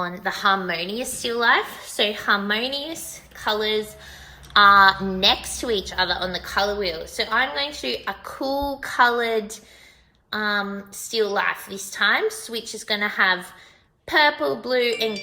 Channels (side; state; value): both; identical; correlation 1.00